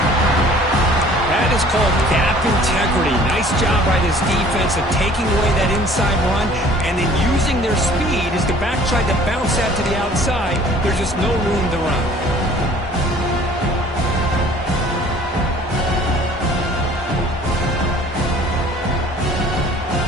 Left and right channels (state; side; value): normal; both; correlation 0.52